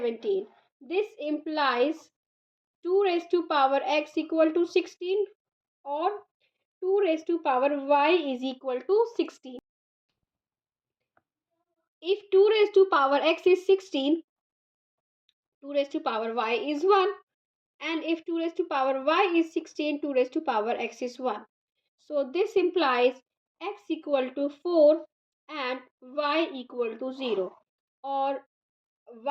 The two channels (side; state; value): both; identical; correlation 1.00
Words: This implies 2 raised to power x equal to 16, or 2 raised to power y is equal to 16. If 2 raised to power x is 16, 2 raised to power y is 1. And if 2 raised to power y is 16, 2 raised to power x is 1. So this implies x equal to 4 and y equal to 0. Or